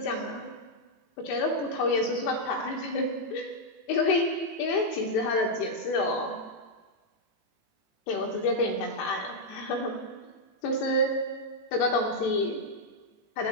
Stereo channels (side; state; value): right; late; 18 ms